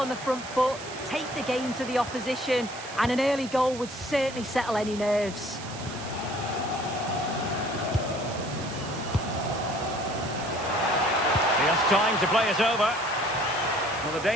the front foot, take the game to the opposition, and an early goal would certainly settle any nerves. He has time to play it over. Well, the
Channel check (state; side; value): noise; right; hiss, 13 dB below the sound